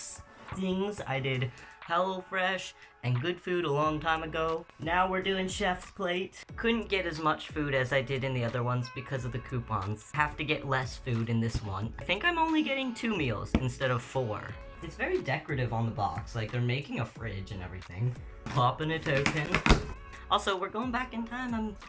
things. I did HelloFresh and Good Food a long time ago. Now we're doing Chef's Plate. Couldn't get as much food as I did in the other ones because of the coupons. Have to get less food in this one. I think I'm only getting 2 meals instead of 4. It's very decorative on the box. Like, they're making a fridge and everything. Popping a token. Also, we're going back in time. I'm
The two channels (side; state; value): both; identical; correlation 1.00